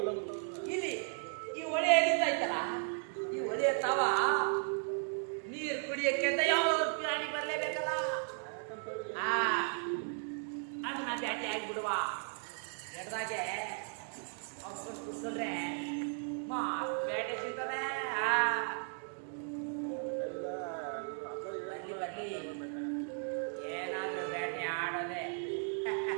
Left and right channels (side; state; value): left; silent; 54 dB below the other